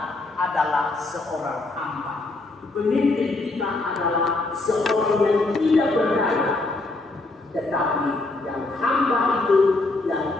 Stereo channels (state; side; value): quieter; right; 3.1 dB